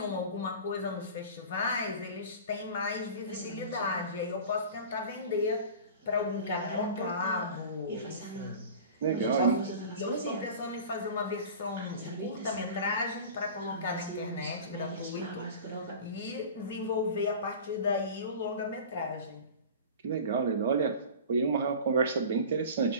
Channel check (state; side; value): inverted; both; correlation -0.37